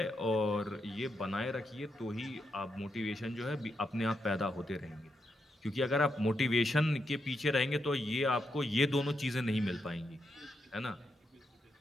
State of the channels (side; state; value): both; normal; correlation 0.83